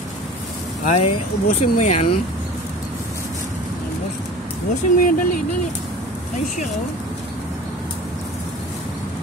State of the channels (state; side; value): normal; both; correlation 0.40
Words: Ay, ubusin mo yan. Ubusin mo yan, dali, dali. Ay siya, oh.